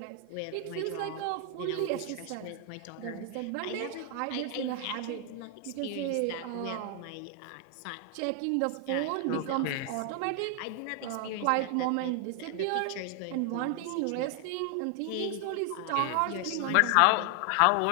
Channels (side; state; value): both; different; correlation 0.00